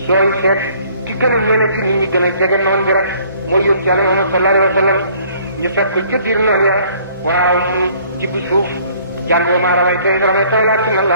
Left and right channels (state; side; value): inverted; both; correlation -0.58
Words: sooy seet ci gën a ñene ci nit ñi gën a jege noon bi rek mooy yónni Yàlla Muhammad sallallahu alayhi wa sallam ñu fekk ko ca biir noonu ya waaw mu jibb suuf jàng wa maa ramayta iz ramayta walaakinna